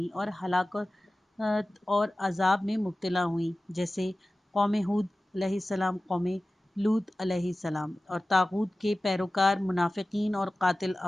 اور ہلاکت اور عذاب میں مبتلا ہوئیں، جیسے قوم ہود علیہ السلام، قوم لوط علیہ السلام، اور طاغوت کے پیروکار منافقین اور قاتل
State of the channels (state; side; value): normal; both; correlation 0.96